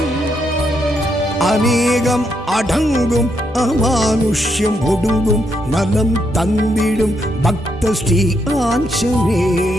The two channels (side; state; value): both; normal; correlation 0.78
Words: அநேகம் அடங்கும் அமானுஷ்யம் ஒடுங்கும் நலம் தந்திடும் பக்த ஸ்ரீ